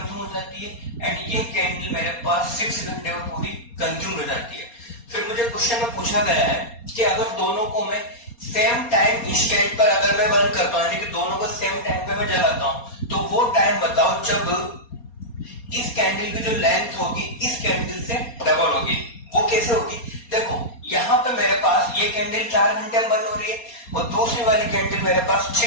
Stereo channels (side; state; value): right; late; 4.2 ms